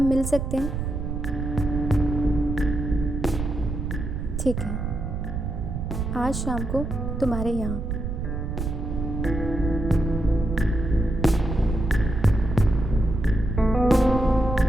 मिल सकते हैं? ठीक है, आज शाम को तुम्हारे यहाँ।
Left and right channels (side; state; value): right; noise; rumble, 4 dB below the sound